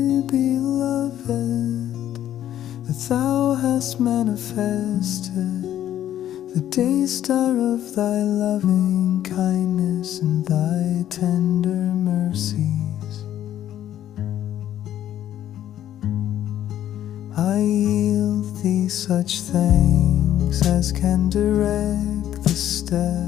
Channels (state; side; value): quieter; right; 11.6 dB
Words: beloved, that thou hast manifested the day star of thy loving kindness and thy tender mercies. I yield thee such thanks as can direct the